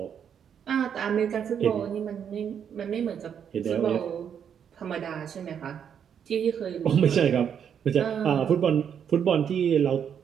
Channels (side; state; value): left; quieter; 8.1 dB